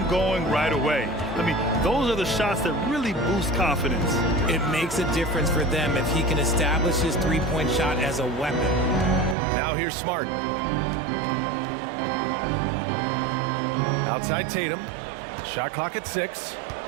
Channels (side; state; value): left; drops out; at 9.3 s